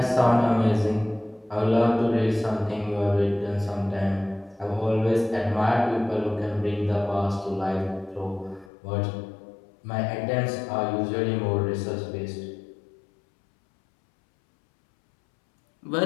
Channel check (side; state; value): right; drops out; at 8.7 s